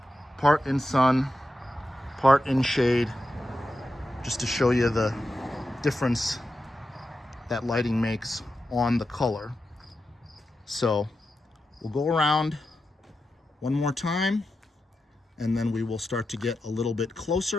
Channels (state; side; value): normal; both; correlation 0.89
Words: part in sun, part in shade, just to show you the difference that lighting makes on the color. So we'll go around one more time and then we will start to get a little bit